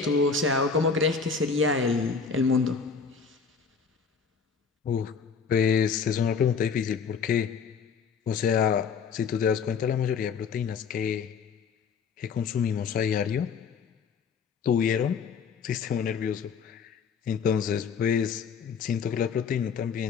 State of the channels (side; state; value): right; quieter; 5.9 dB